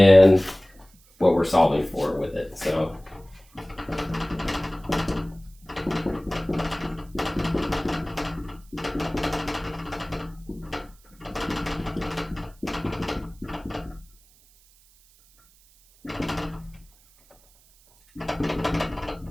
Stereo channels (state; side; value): noise; right; hiss, 29 dB below the sound